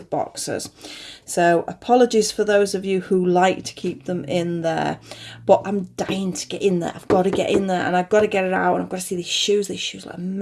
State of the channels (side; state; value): both; identical; correlation 1.00